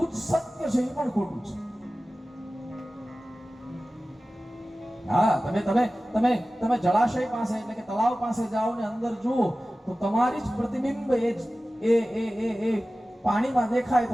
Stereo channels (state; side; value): normal; both; correlation 0.96